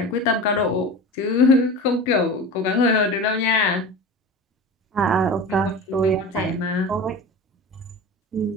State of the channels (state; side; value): normal; both; correlation 0.32